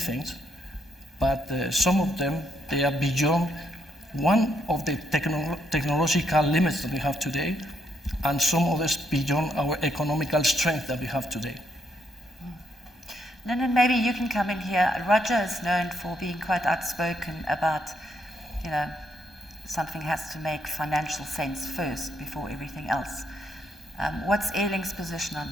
but some of them, they are beyond one of the technological limits that we have today, and some others beyond our economical strength that we have today. Linden, maybe you can come in here. Roger is known for being quite outspoken about, something has to make financial sense first before everything else. What's Airlink's position on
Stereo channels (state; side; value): normal; both; correlation 0.75